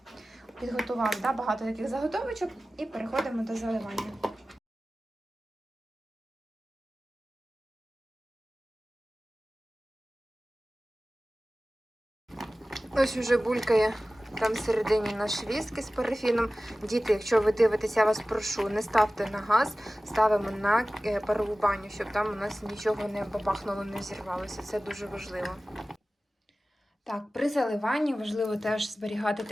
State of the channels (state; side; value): normal; both; correlation 0.96